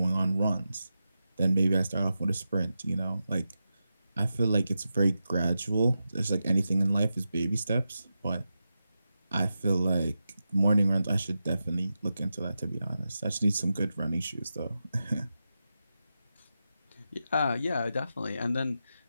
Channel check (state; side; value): inverted; both; correlation -0.90